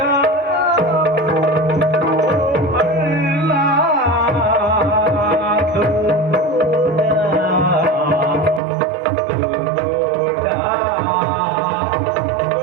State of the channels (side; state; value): left; drops out; at 8.6 s